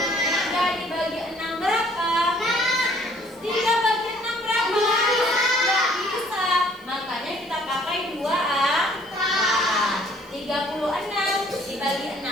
3 dibagi 6 berapa? 3 bagi 6 berapa? Nggak bisa. Makanya kita pakai 2 angka. 36 dibagi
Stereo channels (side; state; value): left; noise; hiss, 28 dB below the sound